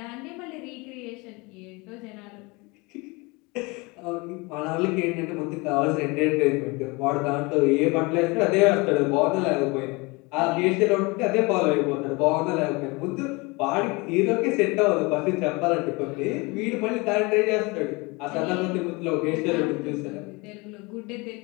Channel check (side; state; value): right; quieter; 26.1 dB